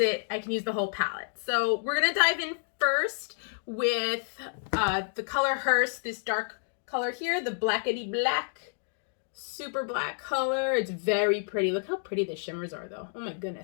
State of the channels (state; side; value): silent; right; digital silence